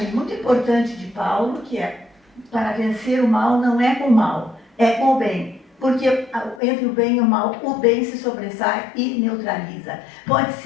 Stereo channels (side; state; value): right; drops out; at 6.6 s